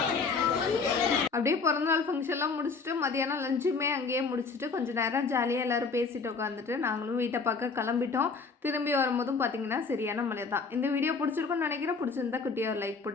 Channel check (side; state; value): right; quieter; 4.7 dB